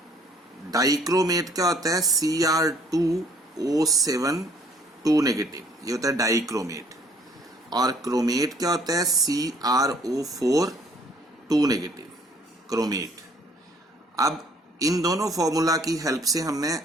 डाइक्रोमेट क्या होता है? Cr2O7 2 नेगेटिव, ये होता है डाइक्रोमेट। और क्रोमेट क्या होता है? CrO4 2 negative, chromate. अब इन दोनों फॉर्मूला की हेल्प से हमने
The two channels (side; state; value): both; normal; correlation 0.60